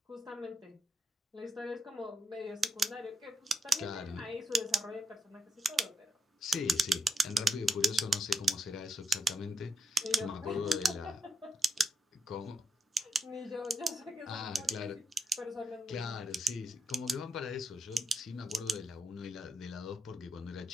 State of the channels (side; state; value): both; normal; correlation 0.82